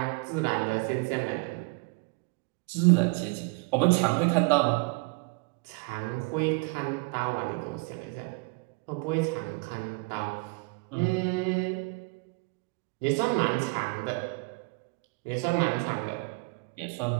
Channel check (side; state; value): left; quieter; 29.1 dB